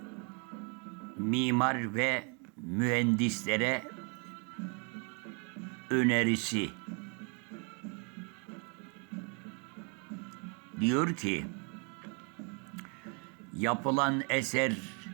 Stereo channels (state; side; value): quieter; left; 35.2 dB